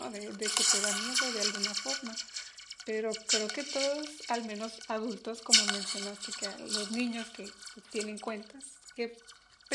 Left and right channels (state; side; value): identical; both; correlation 1.00